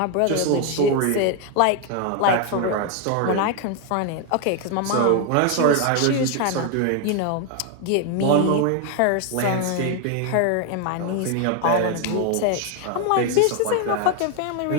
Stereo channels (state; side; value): different; both; correlation 0.01